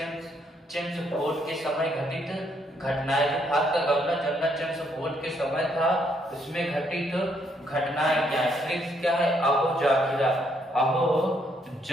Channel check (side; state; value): both; normal; correlation 0.72